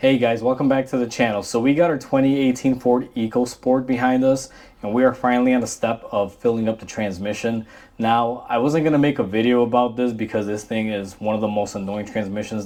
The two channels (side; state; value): both; identical; correlation 1.00